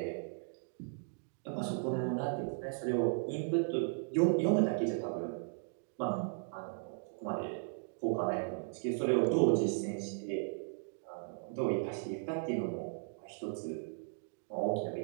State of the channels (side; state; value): left; silent; digital silence